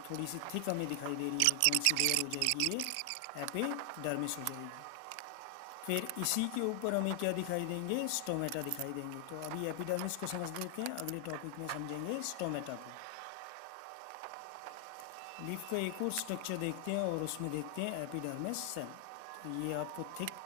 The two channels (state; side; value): different; both; correlation 0.00